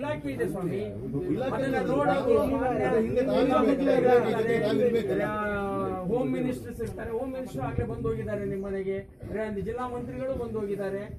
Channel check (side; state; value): both; identical; correlation 1.00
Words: ಇದೆ ಸ್ವಾಮಿ, ಅದನ್ನ ನೋಡೋದು. ಹೋಮ್ ಮಿನಿಸ್ಟರ್ಸ್ ಇರ್ತಾರೆ, ಹೋಮ್ ಮಿನಿಸ್ಟರ್ ಆಗ್ಲೇ ಬಂದು ಹೋಗಿದ್ದಾರೆ ನಿಮ್ಮ ಮನೆಗೆ, ಜಿಲ್ಲಾ ಮಂತ್ರಿಗಳು ಬಂದು ಹೋಗಿದ್ದಾರೆ,